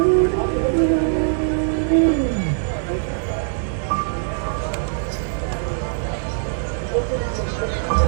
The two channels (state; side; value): silent; left; digital silence